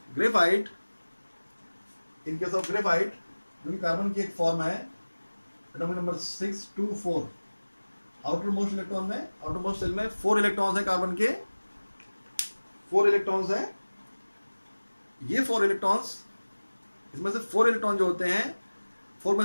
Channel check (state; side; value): inverted; both; correlation -1.00